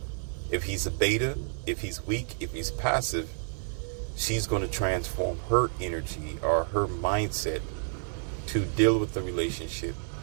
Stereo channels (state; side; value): silent; left; 58 dB below the other